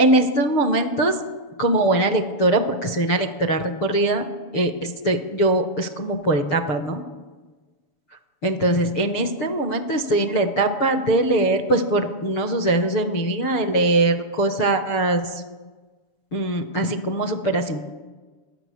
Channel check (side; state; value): right; late; 7.1 ms